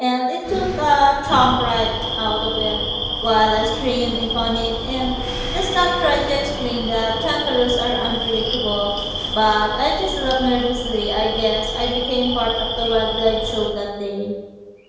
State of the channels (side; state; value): both; identical; correlation 1.00